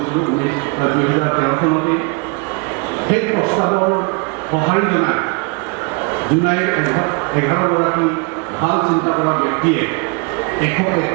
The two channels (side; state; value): left; quieter; 32.2 dB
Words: 2013 চনতে। সেই প্ৰস্তাৱৰ সঁহাৰি জনাই জোনাই 11গৰাকী ভাল চিন্তা কৰা ব্যক্তিয়ে